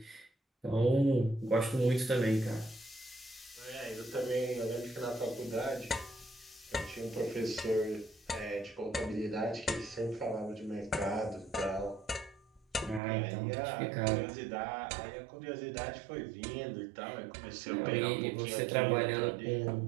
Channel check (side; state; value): left; drops out; at 13.0 s